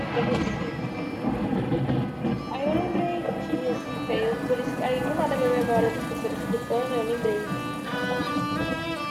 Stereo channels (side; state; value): both; identical; correlation 1.00